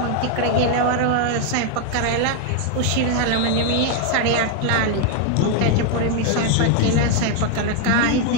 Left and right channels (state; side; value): different; both; correlation 0.01